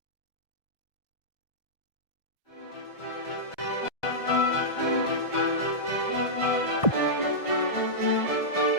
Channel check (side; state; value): right; late; 1.5 ms